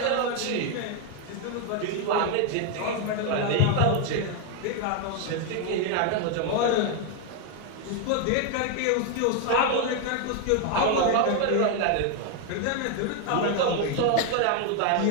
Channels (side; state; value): both; different; correlation 0.01